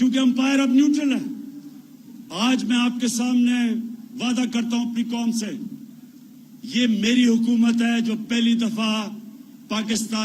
امپائر اب نیوٹرل ہے. آج میں آپ کے سامنے وعدہ کرتا ہوں اپنی قوم سے، یہ میری حکومت ہے جو پہلی دفعہ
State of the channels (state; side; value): identical; both; correlation 1.00